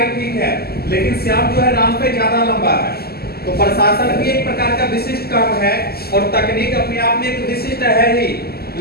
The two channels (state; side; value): late; right; 0.46 ms